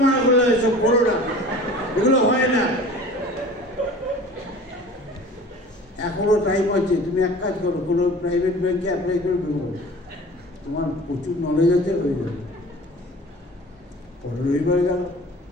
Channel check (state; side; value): normal; both; correlation 0.43